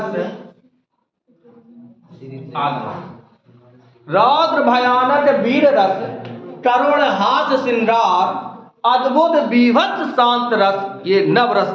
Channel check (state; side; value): identical; both; correlation 1.00